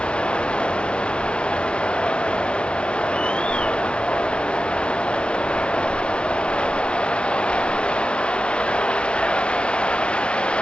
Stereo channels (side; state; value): right; late; 0.056 ms